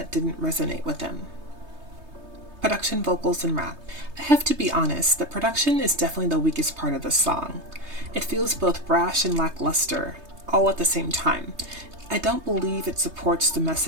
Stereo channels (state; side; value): late; left; 3.2 ms